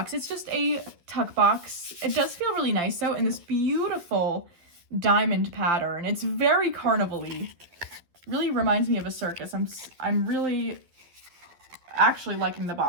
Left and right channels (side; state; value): left; late; 12 ms